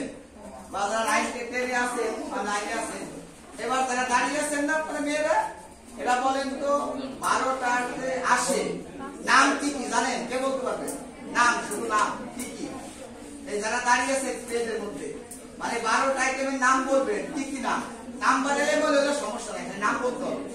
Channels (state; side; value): identical; both; correlation 1.00